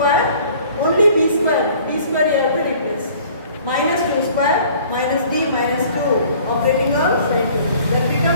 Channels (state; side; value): inverted; both; correlation -0.52